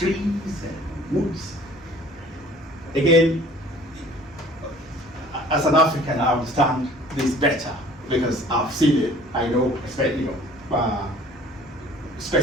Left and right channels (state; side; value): normal; both; correlation 0.51